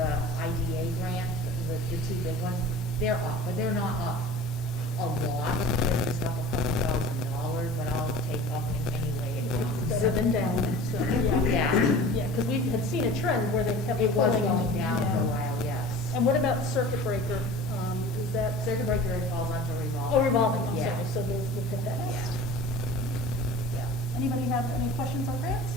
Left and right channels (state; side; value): normal; both; correlation 0.40